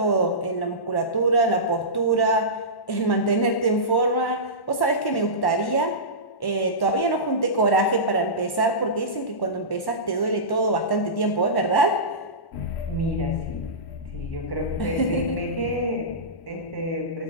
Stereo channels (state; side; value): late; right; 1.1 ms